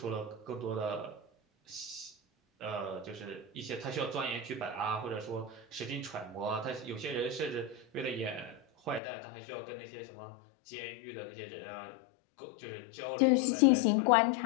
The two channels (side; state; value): right; drops out; at 9.0 s